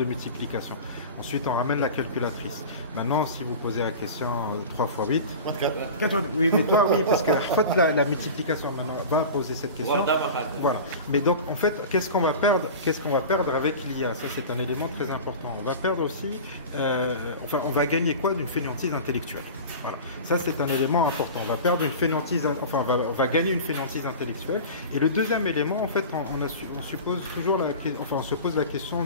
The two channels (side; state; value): both; inverted; correlation -0.33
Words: multiplication. Ensuite, on ramène la calculatrice. Maintenant, si vous posez la question 3 x 8... 4. Oui, mais toi, oui, parce que la multiplication, maintenant, va poser cette question. Voilà. Mais donc, en fait, qu'est-ce qu'on va perdre avec l'IA? Ça, c'est un élément très important. On va perdre aussi... on va gagner quoi d'une fainéantise intellectuelle? Voilà. Ça, c'est un élément important. On va perdre une fainéantise... on va gagner une fainéantise intellectuelle. Et le deuxième élément, en fait, on se pose la question